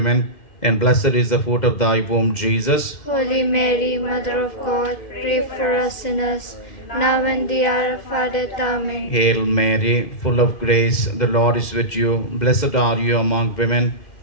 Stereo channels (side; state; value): right; late; 2.1 ms